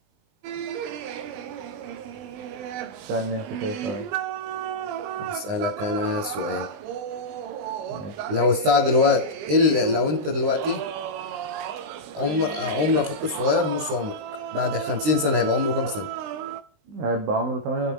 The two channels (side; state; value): left; late; 20 ms